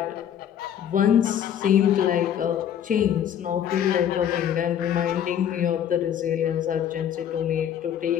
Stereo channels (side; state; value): right; quieter; 9.7 dB